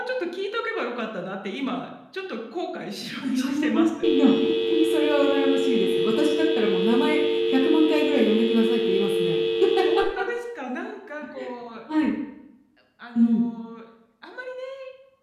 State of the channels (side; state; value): both; identical; correlation 1.00